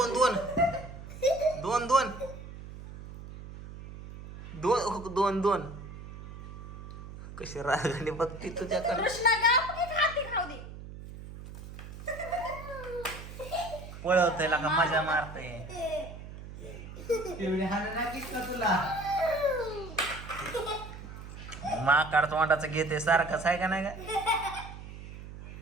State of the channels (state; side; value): noise; right; hum, 13 dB below the sound